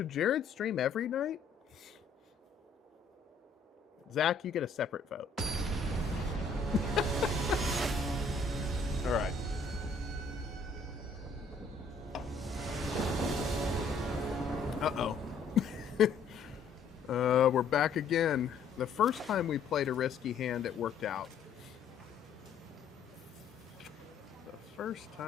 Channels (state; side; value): quieter; right; 4.4 dB